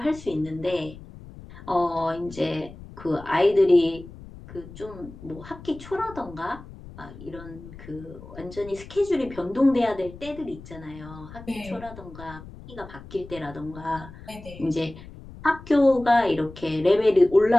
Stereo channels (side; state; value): left; noise; rumble, 16 dB below the sound